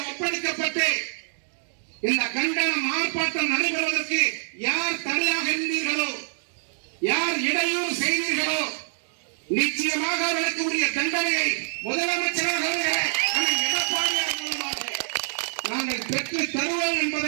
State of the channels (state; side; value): silent; left; digital silence